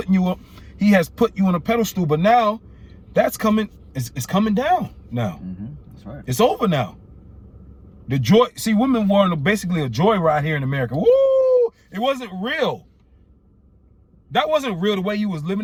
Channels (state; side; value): identical; both; correlation 1.00